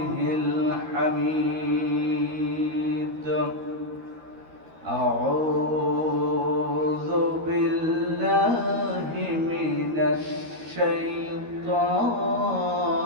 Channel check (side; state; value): left; late; 13 ms